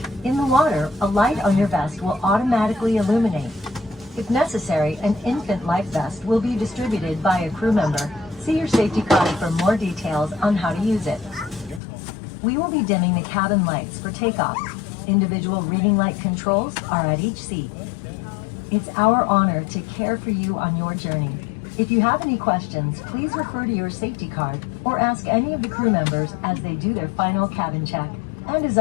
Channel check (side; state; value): right; drops out; at 11.8 s